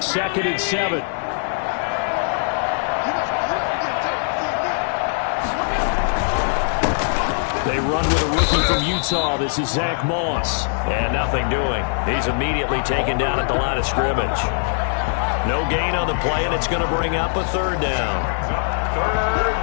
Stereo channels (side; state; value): right; silent; digital silence